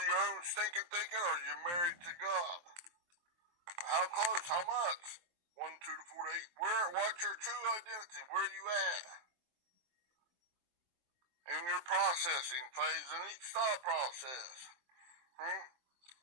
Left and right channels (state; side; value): late; left; 23 ms